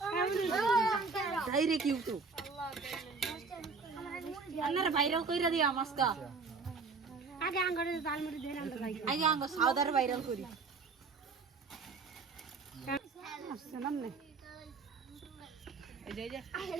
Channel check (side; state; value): left; quieter; 4.6 dB